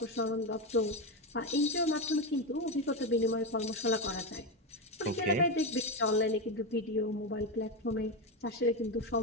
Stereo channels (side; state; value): both; normal; correlation 0.13